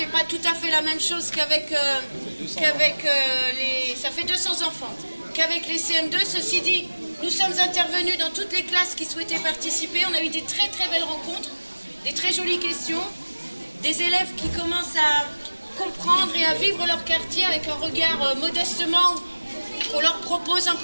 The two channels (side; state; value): both; inverted; correlation -1.00